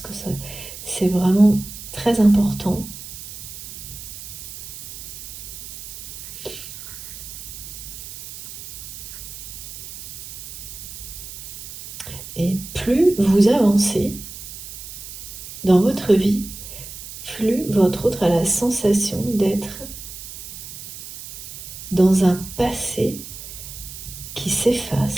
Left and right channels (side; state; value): right; noise; hiss, 12 dB below the sound